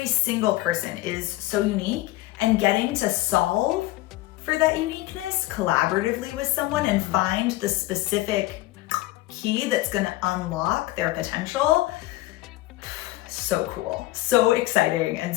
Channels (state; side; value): quieter; right; 17.7 dB